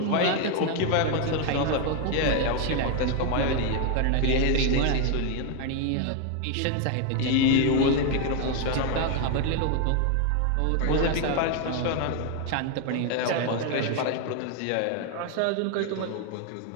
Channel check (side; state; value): both; different; correlation 0.01